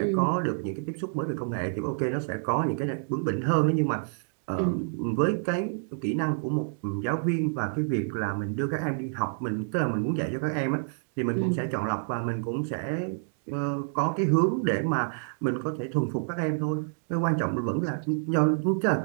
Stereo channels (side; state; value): left; silent; digital silence